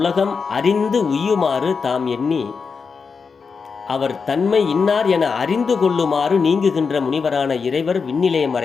அறிந்து உய்யுமாறு தாம் எண்ணி அவர் தன்மை இன்னார் என அறிந்து கொள்ளுமாறு நீங்குகின்ற முனிவரான இறைவர் விண்ணிலே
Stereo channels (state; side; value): quieter; right; 5.3 dB